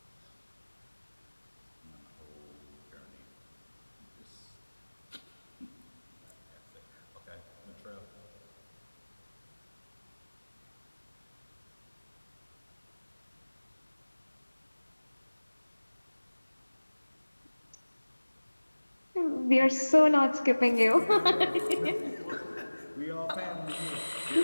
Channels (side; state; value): both; inverted; correlation -1.00